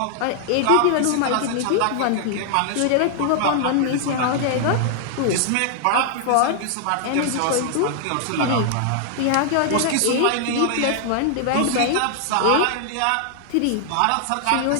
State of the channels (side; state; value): both; different; correlation 0.00